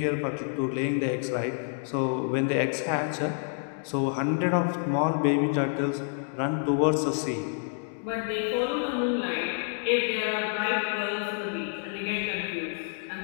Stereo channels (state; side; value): silent; right; 59 dB below the other